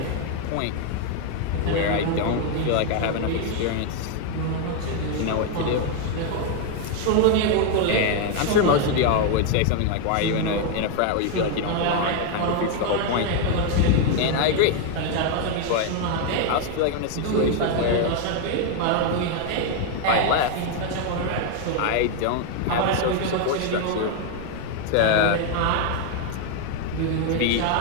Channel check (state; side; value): different; both; correlation 0.00